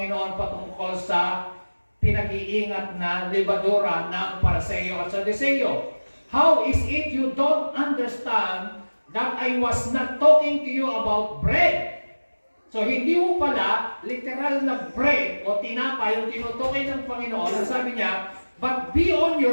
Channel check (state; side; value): inverted; both; correlation -1.00